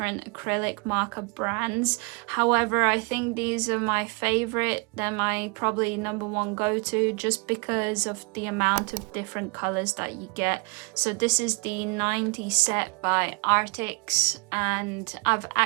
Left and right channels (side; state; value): left; quieter; 31.9 dB